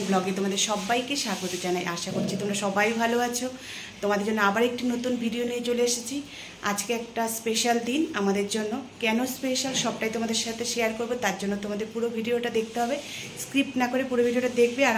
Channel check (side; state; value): both; identical; correlation 1.00